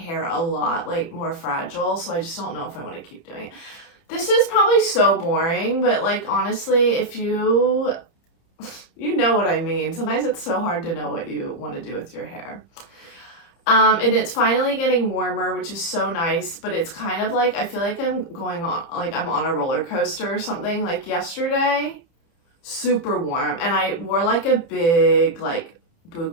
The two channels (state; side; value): late; right; 30 ms